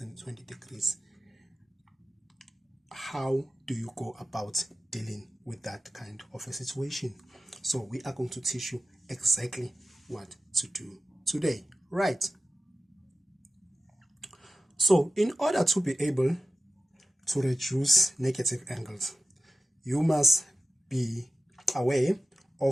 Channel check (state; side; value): normal; both; correlation 0.94